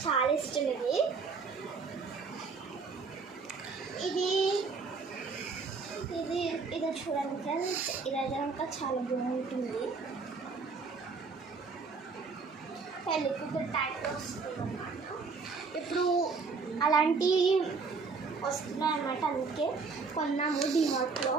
చాలా ఇష్టం ఇది. ఇది ఇది ఇది చూడండి ఫ్రెండ్స్, ఇదైతే కనుక చాలా బాగుంటుంది. పెళ్ళికి టైప్లో వస్తుంది అనమాట. ఇప్పుడు అలాంటి వస్తున్నాయి అన్నమాట, అందుకే కొన్నాము డిమార్ట్లో.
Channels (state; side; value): quieter; left; 4.7 dB